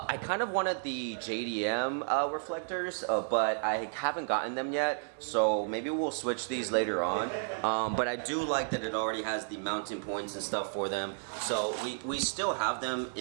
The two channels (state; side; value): silent; left; digital silence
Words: I kind of wanted the JDM reflectors, but I haven't gotten them yet, so maybe we'll switch these later on. But I do like that it already has the mounting points and stuff for them. So we still have them